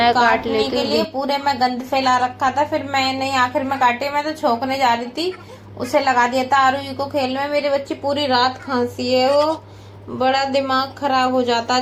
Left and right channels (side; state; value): both; identical; correlation 1.00